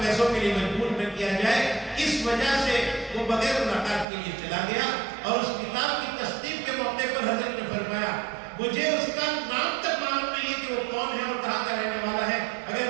پیسوں کے لیے مجبور نہ کیا جائے، اس وجہ سے وہ بغیر ملاقات کے لیے چلا گیا۔ اور اس کتاب کی تصدیق کے موقع پر حضرت نے فرمایا مجھے اس کا نام تک معلوم نہیں ہے کہ وہ کون ہے اور کہاں کا رہنے والا ہے،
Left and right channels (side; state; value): left; drops out; at 4.0 s